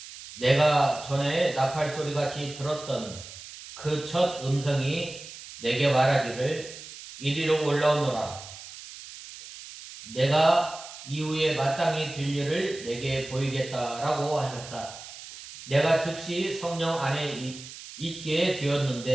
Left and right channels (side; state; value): right; noise; hiss, 14 dB below the sound